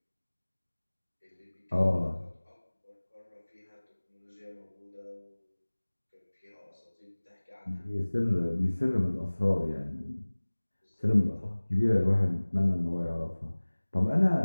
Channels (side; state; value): both; inverted; correlation -1.00